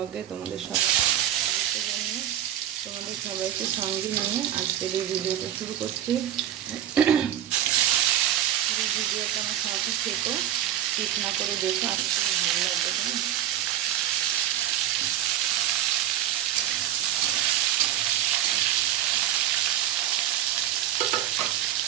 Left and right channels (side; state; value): left; quieter; 11.4 dB